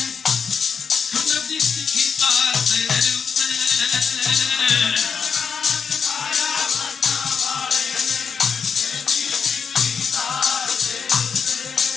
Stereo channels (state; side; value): quieter; right; 6.2 dB